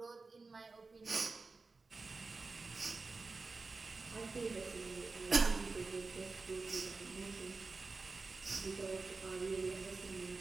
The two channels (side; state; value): left; quieter; 4.0 dB